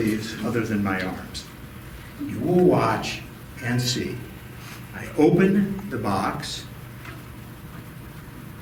other than my arms. You will watch and see. I open the box.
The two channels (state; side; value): identical; both; correlation 1.00